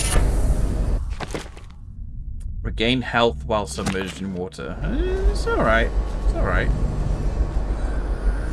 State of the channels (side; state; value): both; identical; correlation 1.00